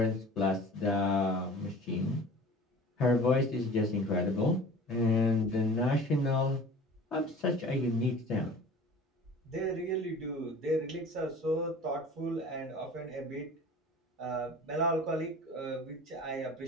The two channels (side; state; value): both; normal; correlation 0.42